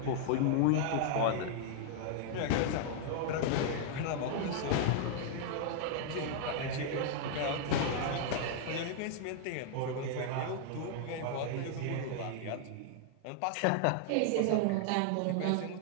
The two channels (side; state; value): both; different; correlation 0.00